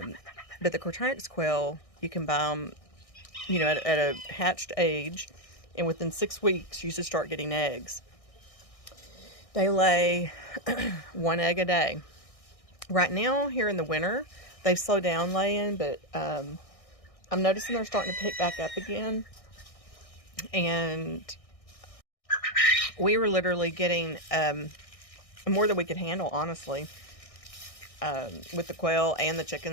the Quaternics quail, you can buy them, at a hatched age, and within 6 weeks, you should start getting eggs. They lay 1 egg a day. Right now, here in the winter, they've slowed down laying, but I'm noticing they're starting to pick back up again. And we were literally getting more than we could handle, honestly, with the quail and the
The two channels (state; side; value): late; right; 1.6 ms